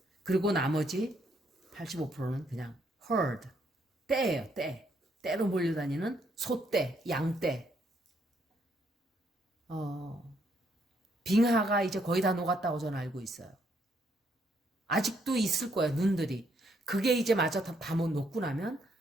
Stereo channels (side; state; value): both; normal; correlation 0.72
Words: 그리고 나머지 85%는 그냥 herd, 떼예요, 떼. 떼로 몰려다니는 소떼, 양떼. 빙하가 이제 거의 다 녹았다고 저는 알고 있어요. 아직도 있을 거예요, 눈들이. 그게 이제 마저 다 못 녹고 나면